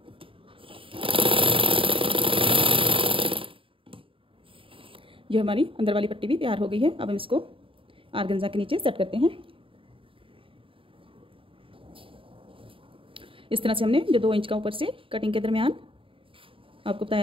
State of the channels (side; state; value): left; late; 0.26 ms